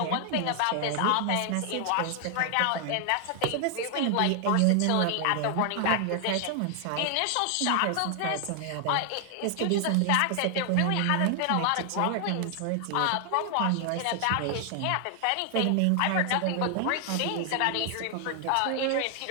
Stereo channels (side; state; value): both; different; correlation 0.00